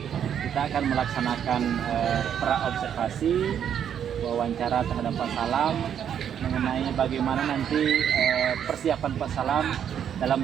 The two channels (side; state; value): left; quieter; 8.9 dB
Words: kita akan melaksanakan pra-observasi wawancara terhadap Pak Salam mengenai bagaimana nanti persiapan Pak Salam dalam